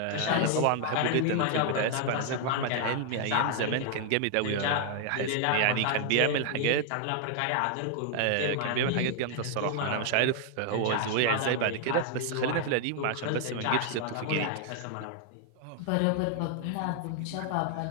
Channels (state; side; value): different; both; correlation 0.00